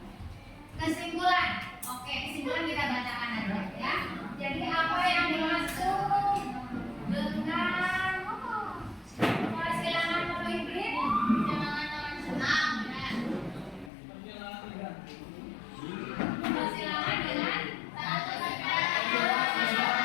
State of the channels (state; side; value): drops out; right; at 13.9 s